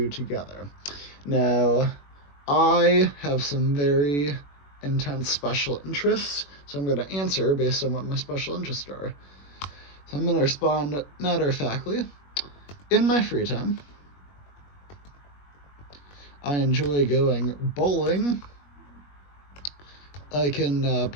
together." Now, I have some very intense special interests, so I'm going to answer based on what my special interests are. So I'm going to respond matter-of-factly. In my free time, I enjoy going bowling. I can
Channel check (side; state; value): right; late; 21 ms